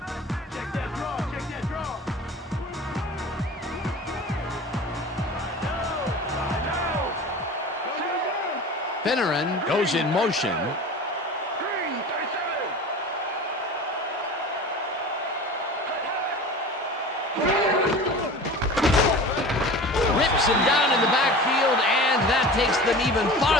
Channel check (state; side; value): normal; both; correlation 0.36